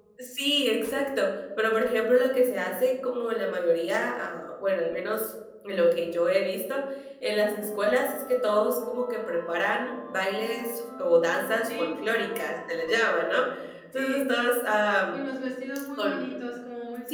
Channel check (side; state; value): both; identical; correlation 1.00